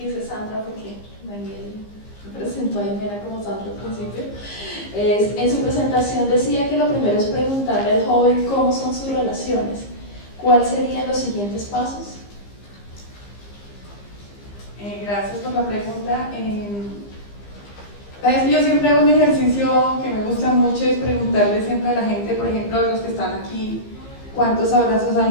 Sandra porque Daniel presentó a Jimena como Sandra al principio. En su presentación decía que lo primero es preguntarle al joven cómo son sus relaciones. ¿Cuáles serían los siguientes pasos? Gracias por la pregunta. Yo siempre hago un ejercicio que me gusta mucho, es preguntarle siempre a la gente, por ejemplo, los que están aquí, ¿cuántos abrazos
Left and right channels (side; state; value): right; late; 15 ms